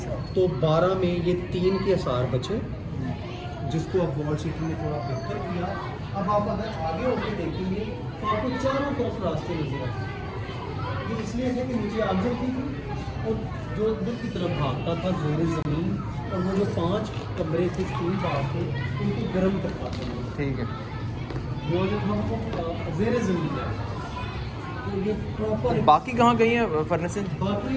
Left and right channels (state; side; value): identical; both; correlation 1.00